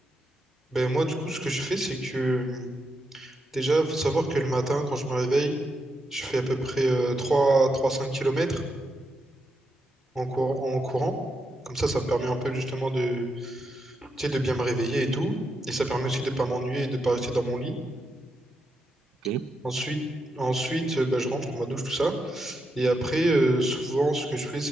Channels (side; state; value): both; normal; correlation 0.84